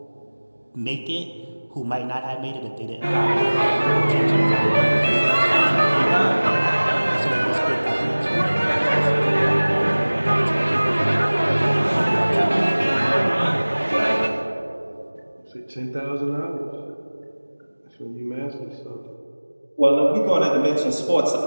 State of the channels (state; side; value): inverted; both; correlation -1.00